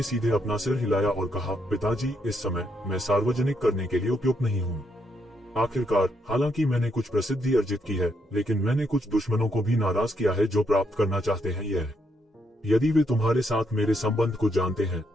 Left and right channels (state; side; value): normal; both; correlation 0.76